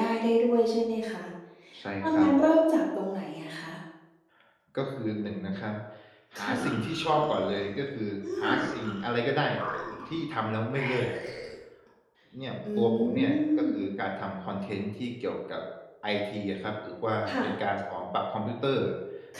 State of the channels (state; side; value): identical; both; correlation 1.00